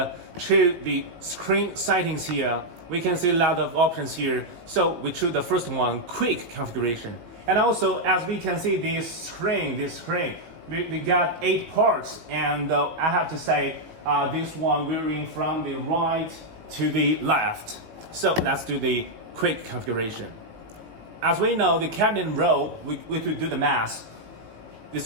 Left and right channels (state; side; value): late; left; 19 ms